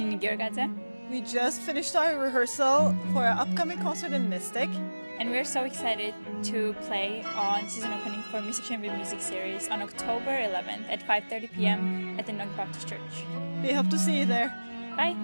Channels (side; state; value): both; inverted; correlation -1.00